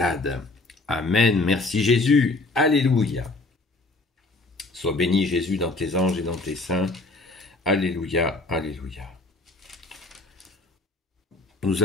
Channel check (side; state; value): right; quieter; 3.1 dB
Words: Amen. Merci Jésus. Alléluia. Sois béni Jésus dans tes anges et dans tes saints. Alléluia. Alléluia. Nous